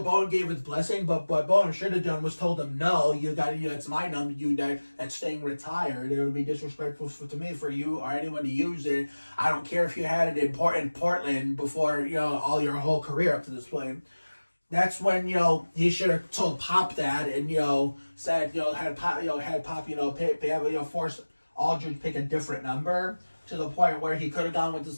Bowen gave his blessing, but what Bowen should have done was told him, no, it's my number, that's staying retired. It would be disrespectful to me for you or anyone to use it. I don't care if you had it in Portland before, all your whole career up to this point. That's when, he should have told Pop that and, said, had Pop, force Aldridge to pick a different number, to the point where he could have gone with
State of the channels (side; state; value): both; inverted; correlation -1.00